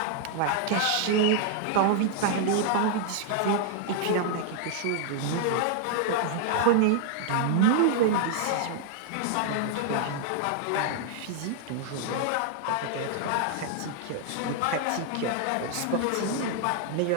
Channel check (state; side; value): different; both; correlation 0.00